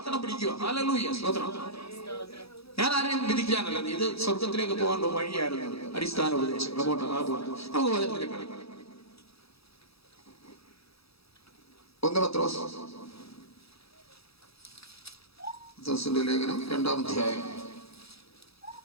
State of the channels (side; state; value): right; late; 0.77 ms